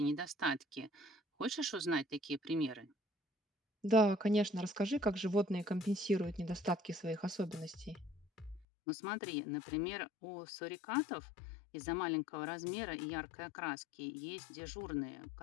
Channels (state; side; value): drops out; right; at 8.7 s